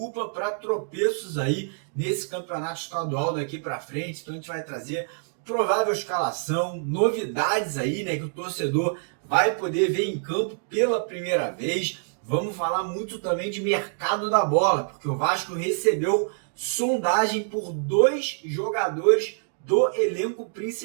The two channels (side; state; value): left; silent; 61 dB below the other